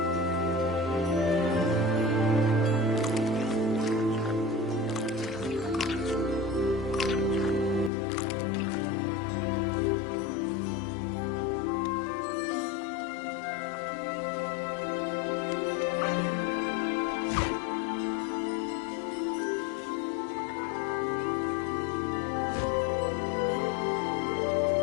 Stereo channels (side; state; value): right; drops out; at 7.9 s